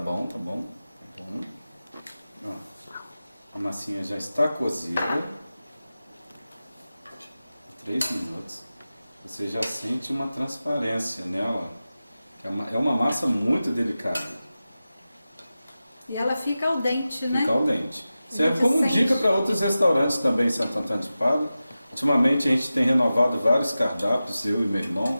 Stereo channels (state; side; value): inverted; both; correlation -0.94